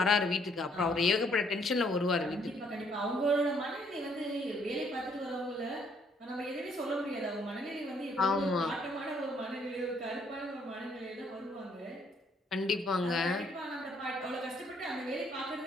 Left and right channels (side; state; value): both; normal; correlation 0.67